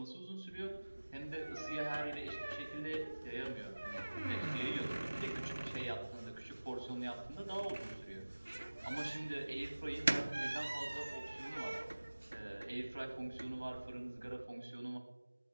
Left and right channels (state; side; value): inverted; both; correlation -1.00